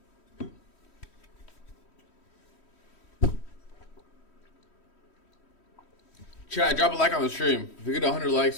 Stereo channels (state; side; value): late; right; 3.1 ms